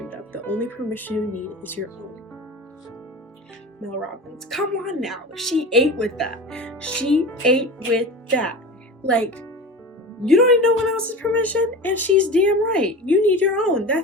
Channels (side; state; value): both; normal; correlation 0.31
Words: of. The only permission you need is your own. Mel Robbins. Come on now. She ate with that. She ate with that. Like, you don't need no one else's permission, and she's damn right. You need your own.